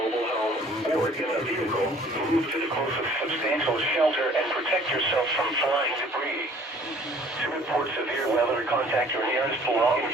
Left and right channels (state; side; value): normal; both; correlation 0.54